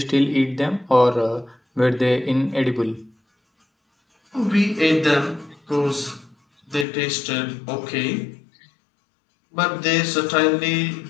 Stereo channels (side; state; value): right; drops out; at 6.9 s